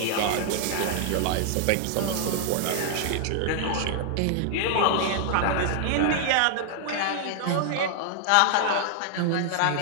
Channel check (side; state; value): both; different; correlation 0.00